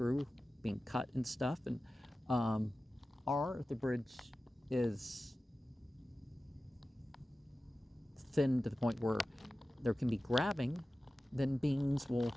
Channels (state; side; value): normal; both; correlation 0.95